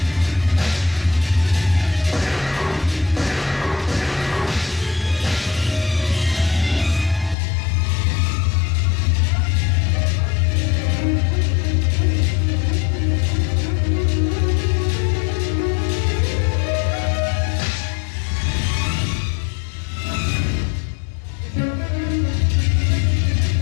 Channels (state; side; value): drops out; right; at 7.4 s